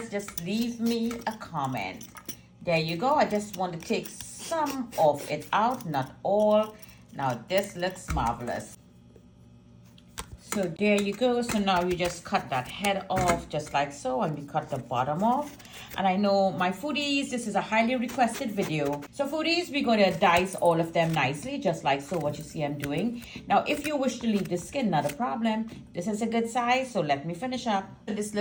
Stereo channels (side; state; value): both; identical; correlation 1.00